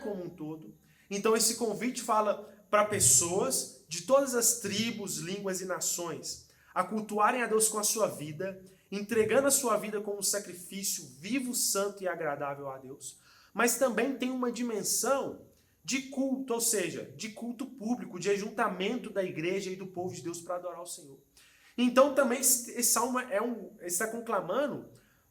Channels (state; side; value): identical; both; correlation 1.00